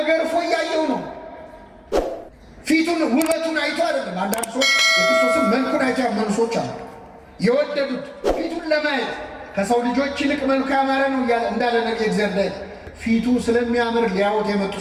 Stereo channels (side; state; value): both; identical; correlation 1.00